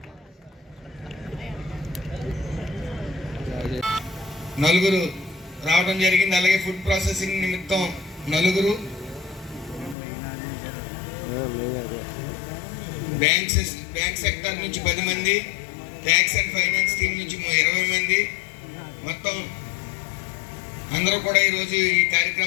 నలుగురు రావడం జరిగింది. అలాగే ఫుడ్ ప్రాసెసింగ్ నిమిత్తం 4, బ్యాంక్ సెక్టర్ నుంచి 10 మంది, ట్యాక్స్ అండ్ ఫైనాన్స్ టీం నుంచి 20 మంది, మొత్తం అందరూ కూడా ఈరోజు ఈ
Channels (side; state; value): right; drops out; at 10.0 s